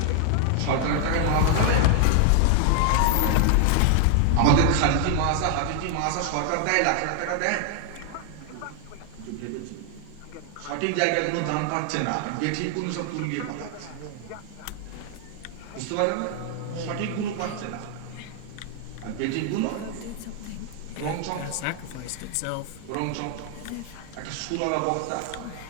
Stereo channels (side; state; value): both; different; correlation 0.00